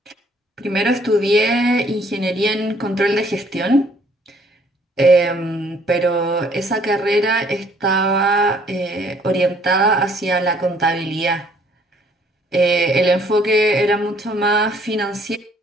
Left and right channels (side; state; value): both; normal; correlation 0.62